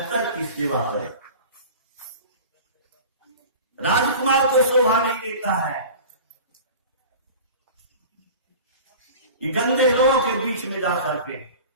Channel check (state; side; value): inverted; both; correlation -0.38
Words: की सेवा करे, राजकुमार को शोभा नहीं देता है कि गंदे लोगों के बीच में जाकर के